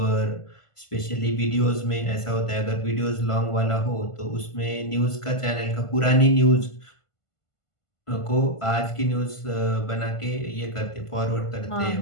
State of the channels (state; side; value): late; right; 1.5 ms